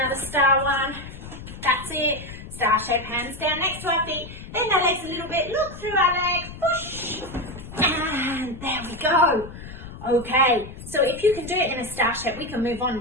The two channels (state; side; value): noise; left; rumble, 13 dB below the sound